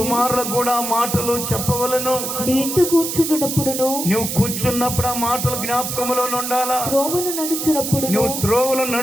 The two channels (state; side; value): noise; right; hiss, 4 dB below the sound